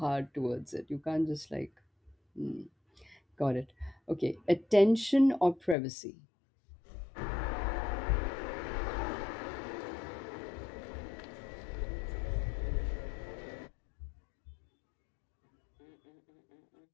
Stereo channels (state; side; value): drops out; right; at 5.8 s